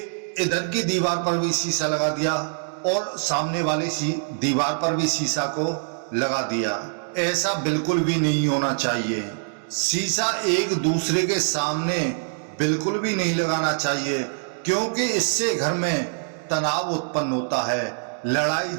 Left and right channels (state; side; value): silent; left; digital silence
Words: इधर की दीवार पर भी शीशा लगा दिया और सामने वाली दीवार पर भी शीशा को लगा दिया। ऐसा बिल्कुल भी नहीं होना चाहिए। शीशा एक दूसरे के सामने बिल्कुल भी नहीं लगाना चाहिए, क्योंकि इससे घर में तनाव उत्पन्न होता है, लड़ाई